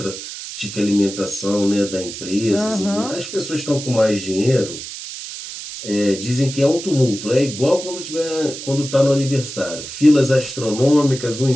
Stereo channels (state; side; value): noise; right; hiss, 10 dB below the sound